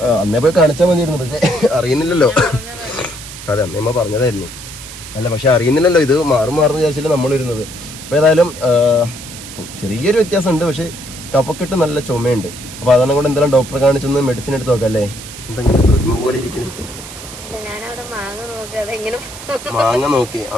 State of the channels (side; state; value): right; noise; hiss, 13 dB below the sound